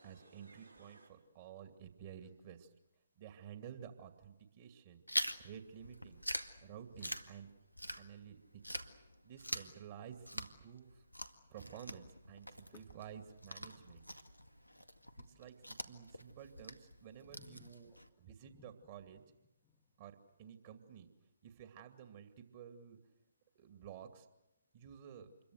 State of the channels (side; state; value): both; inverted; correlation -0.86